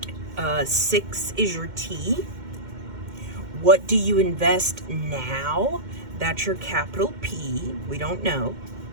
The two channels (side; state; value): left; late; 2.1 ms